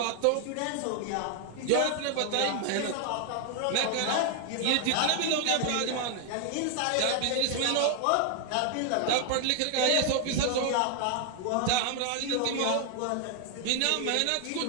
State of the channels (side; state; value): both; different; correlation 0.00